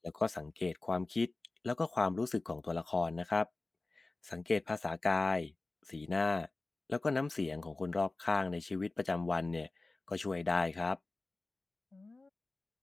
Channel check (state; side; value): quieter; right; 3.2 dB